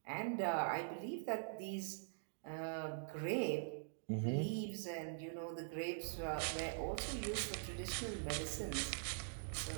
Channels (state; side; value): silent; left; digital silence